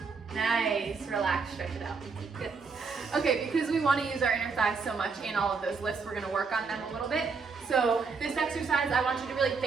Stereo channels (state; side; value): quieter; left; 5.0 dB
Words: Nice, relax, stretch it out. Good. Okay, because we want to use our inner thighs so much in all of those lifts, we're going to work on them a little bit. So this exercise, I want you to really